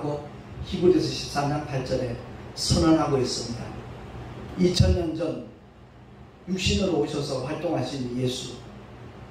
히브리서 13장 8절에 선언하고 있습니다. 2000년 전 육신으로 오셔서 활동하신 예수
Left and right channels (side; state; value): both; identical; correlation 1.00